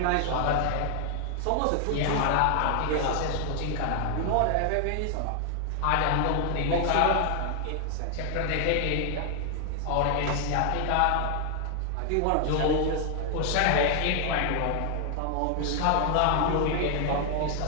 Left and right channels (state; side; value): different; both; correlation 0.00